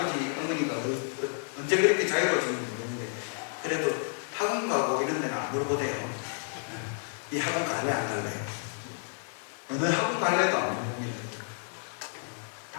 어머니가 언제 그렇게 자유로워지는지 모르겠는데 그래도 학원 가고 이런 데는 안 물어보대요. 이 학원 갈래 안 갈래? 어느 학원 갈래도 안 물어봅니다.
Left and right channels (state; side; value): silent; right; 57 dB below the other